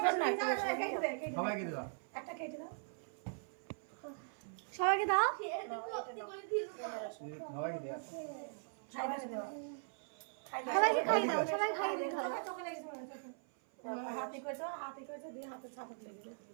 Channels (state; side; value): silent; left; 51 dB below the other